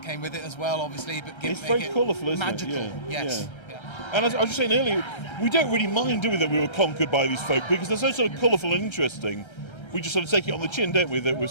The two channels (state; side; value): late; right; 1.3 ms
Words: came with it as well, obviously. But it's very colourful, isn't magical. it? Yeah. Yes. Yeah. And as I was just saying earlier, we don't really mind, do we, that we were conquered by these folk, because they're so sort of colourful and interesting. We just sort of take it on the chin, don't we, that we're